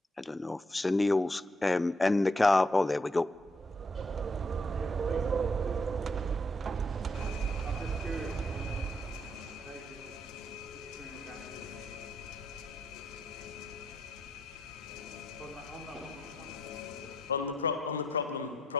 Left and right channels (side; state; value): both; normal; correlation 0.76